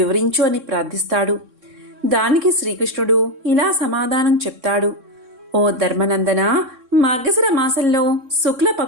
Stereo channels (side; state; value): left; late; 3.6 ms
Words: అని ప్రార్థిస్తాడు. దానికి శ్రీకృష్ణుడు ఇలా సమాధానం చెప్తాడు: ఓ ధర్మనందన, మార్గశిర మాసంలో శుక్ల